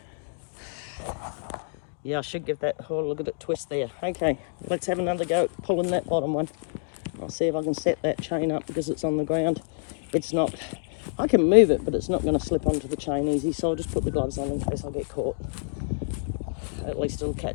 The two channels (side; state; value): right; silent; digital silence